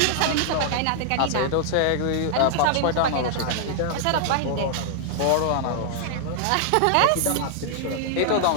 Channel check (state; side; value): different; both; correlation 0.00